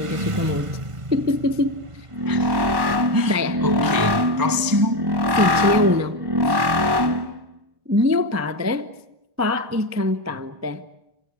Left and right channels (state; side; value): late; left; 1.1 ms